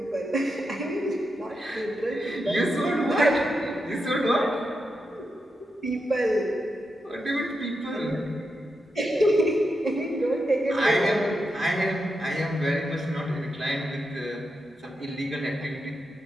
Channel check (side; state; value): both; normal; correlation 0.86